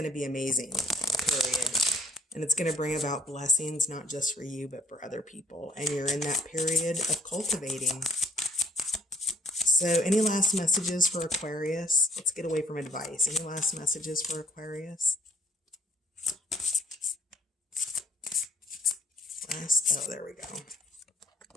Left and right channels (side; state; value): both; normal; correlation 0.58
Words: to be amazing, period. And it's going to bring about blessings, not just for you, but for other people. And you're in that period of cultivating. So any last messages for Aquarius? Let's get away from advice. Any last messages for Aquarius? Oh, there we go.